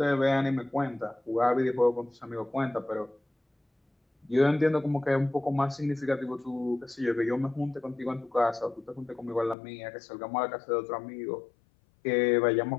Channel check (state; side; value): drops out; right; at 9.6 s